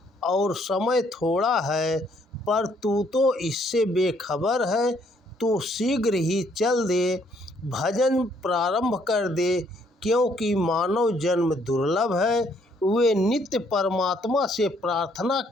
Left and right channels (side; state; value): both; normal; correlation 0.67